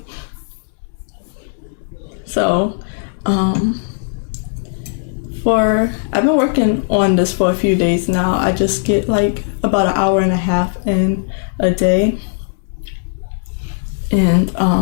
So I've been working on this for a few days now. I just get like about an hour and a half in a day. And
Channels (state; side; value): silent; right; digital silence